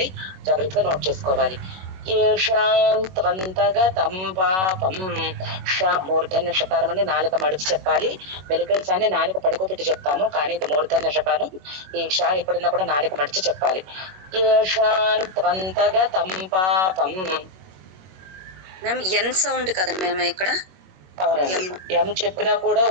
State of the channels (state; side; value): late; left; 21 ms